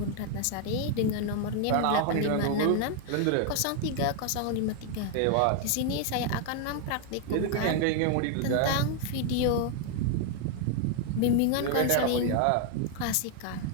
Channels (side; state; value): both; different; correlation 0.00